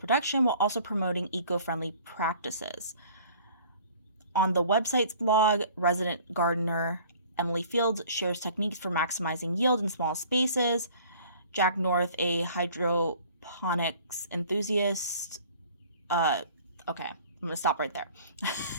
while also promoting eco-friendly practices. On the website's blog, resident gardener Emily Fields shares techniques for maximizing yield in small spaces. Jack North, a hydroponics enthusiast. Okay, I'm going to stop right there.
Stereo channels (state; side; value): inverted; both; correlation -0.51